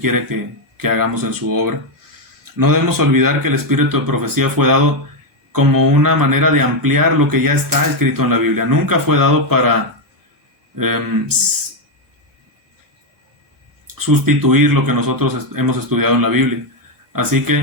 que hagamos en su obra. No debemos olvidar que el espíritu de profecía fue dado como una manera de ampliar lo que ya está escrito en la Biblia. Nunca fue dado para sustituir lo que nosotros hemos estudiado en la Biblia. Así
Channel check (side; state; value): both; normal; correlation 0.04